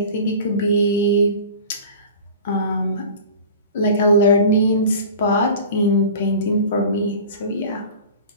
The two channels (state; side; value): inverted; both; correlation -0.39